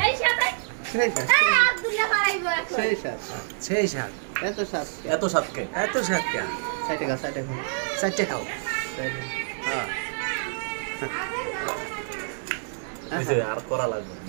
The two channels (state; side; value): silent; left; digital silence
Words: সাথে সেই সাত আব্দুল্লাহ পারাইবো এখন সেই সাত সেই স্বাদ এত সাত এত সাতকে এত স্বাদ কে সাইটে খাও সাইটে খাও চারটে খাও হ্যাঁ আর করা লাগবে